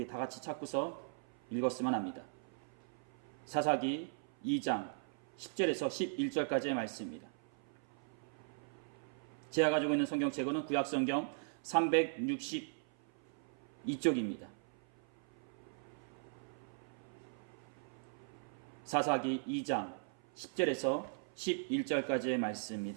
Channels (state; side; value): silent; left; 52 dB below the other